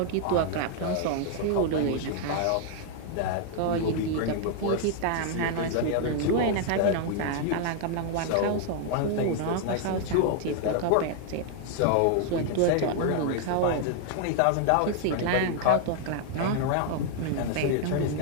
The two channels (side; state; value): both; different; correlation 0.00